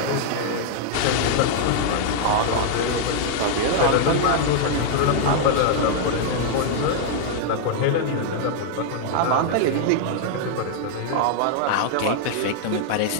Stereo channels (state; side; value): different; both; correlation 0.00